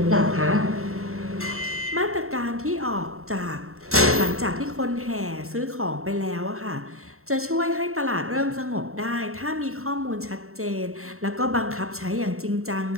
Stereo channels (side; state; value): left; late; 0.63 ms